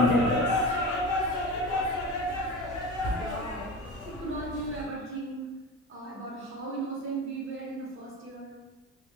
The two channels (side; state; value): both; normal; correlation 0.29